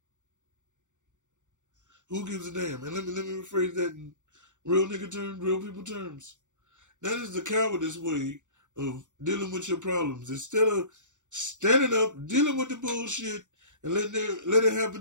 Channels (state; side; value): late; left; 0.85 ms